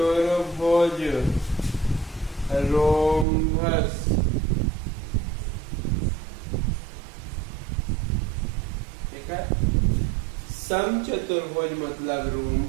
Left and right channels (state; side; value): drops out; left; at 3.2 s